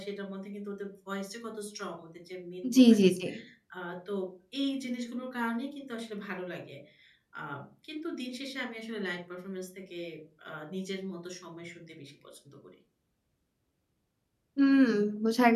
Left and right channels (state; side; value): identical; both; correlation 1.00